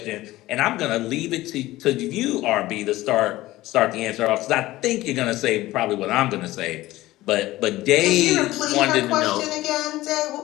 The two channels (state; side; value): quieter; right; 17.2 dB